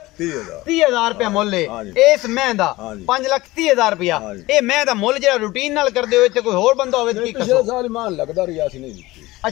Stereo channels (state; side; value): quieter; right; 19.2 dB